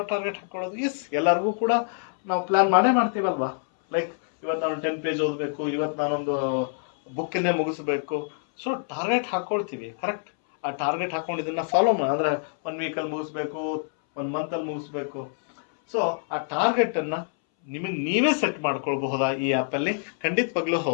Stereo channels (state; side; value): silent; right; 61 dB below the other